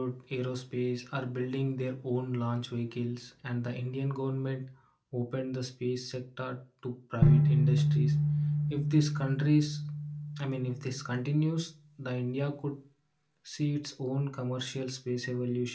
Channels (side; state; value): both; identical; correlation 1.00